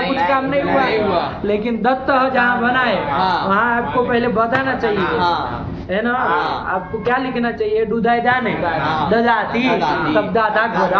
काम नहीं नहीं हुआ, हुआ। लेकिन दत्त जहाँ बनाए हाँ। वहाँ आपको पहले बताना चाहिए, हाँ। है ना। हाँ। आपको क्या लिखना चाहिए, डुदाई दाने, हाँ। ददाती, ददाती। तब दादा गोदा,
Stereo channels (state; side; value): identical; both; correlation 1.00